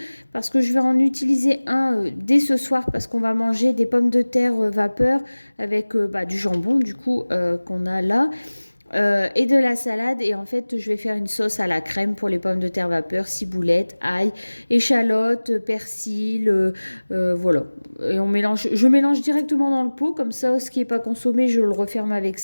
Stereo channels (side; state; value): both; inverted; correlation -1.00